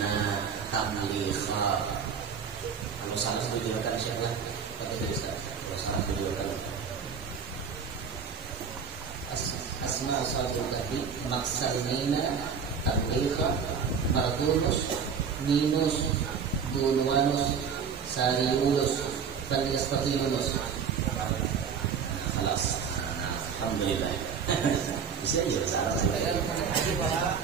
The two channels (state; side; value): quieter; left; 6.4 dB